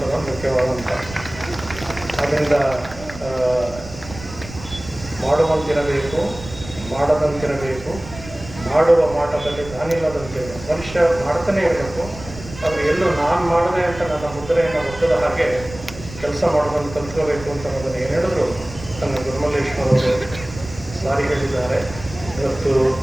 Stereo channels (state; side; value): noise; right; rumble, 14 dB below the sound